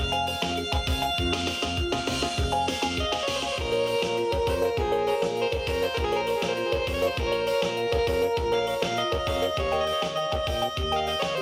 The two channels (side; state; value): both; identical; correlation 1.00